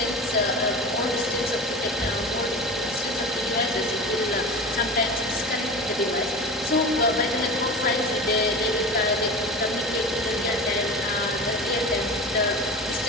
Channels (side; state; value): both; normal; correlation 0.31